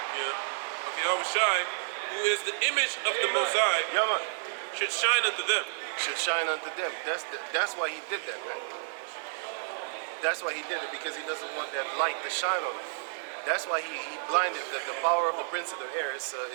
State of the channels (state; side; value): silent; left; digital silence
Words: who is the image of the Most High, should shine unto them. should shine unto them. That's why he did that, man. That's why he did it, because he doesn't want that light to shine on them. That's why he blinded the power of the prince of the air is